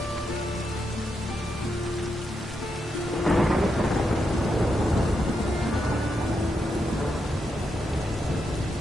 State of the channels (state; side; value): normal; both; correlation 0.83